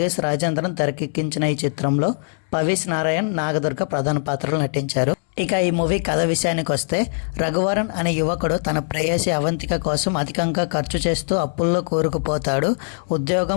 రాజేంద్రన్ తెరకెక్కించిన ఈ చిత్రంలో పవీస్ నారాయణ్, నాగదుర్గ ప్రధాన పాత్రలు నటించారు. ఇక ఈ మూవీ కథ విషయానికి వస్తే, రఘువరన్ అనే యువకుడు తన ప్రేయసి అవంతిక కోసం అధికంగా ఖర్చు చేస్తూ అప్పుల్లో కూరుకుపోతాడు.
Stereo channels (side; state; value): right; silent; digital silence